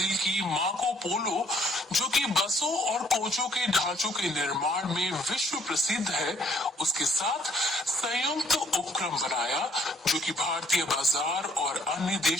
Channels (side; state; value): both; normal; correlation 0.63